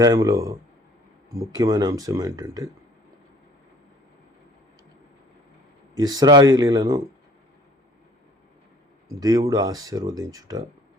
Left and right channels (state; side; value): normal; both; correlation 0.54